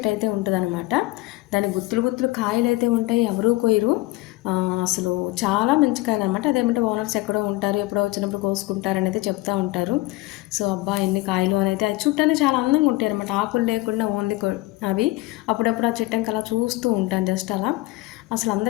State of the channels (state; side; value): quieter; right; 19.8 dB